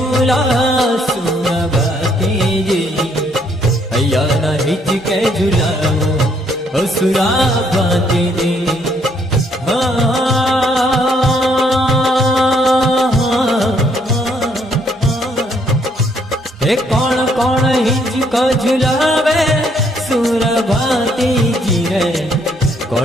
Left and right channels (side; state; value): both; normal; correlation 0.68